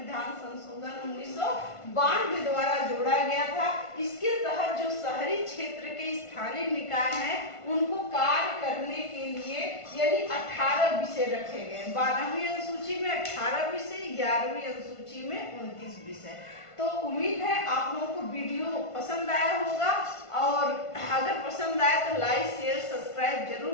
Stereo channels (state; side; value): late; right; 1.5 ms